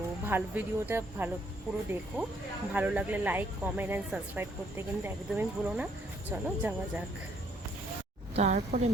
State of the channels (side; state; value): both; normal; correlation 0.68